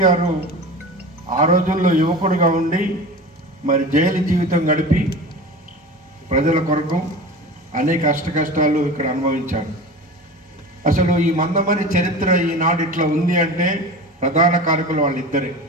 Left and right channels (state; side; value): normal; both; correlation 0.33